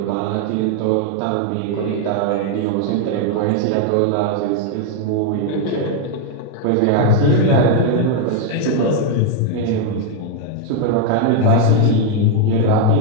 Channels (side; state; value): both; different; correlation 0.01